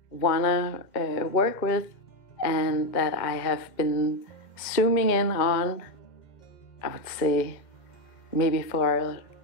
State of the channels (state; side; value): late; right; 2.1 ms